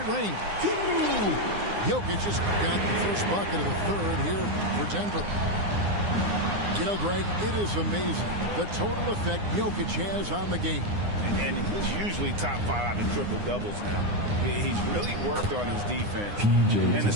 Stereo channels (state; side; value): late; left; 9.8 ms